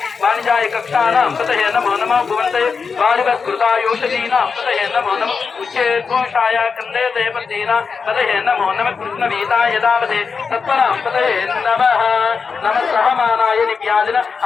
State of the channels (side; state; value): right; quieter; 5.4 dB